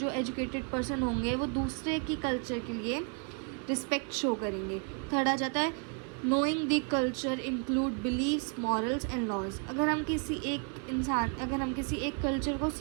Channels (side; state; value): left; quieter; 39.9 dB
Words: एजुकेटेड पर्सन होंगे वो दूसरे की कल्चर के लिए रिस्पेक्ट शो करेंगे। थर्ड आ जाता है knowing the culture include beliefs, morals and laws. अगर हम किसी एक कल्चर को